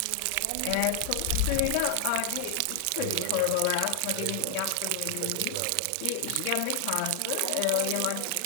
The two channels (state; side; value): different; both; correlation 0.00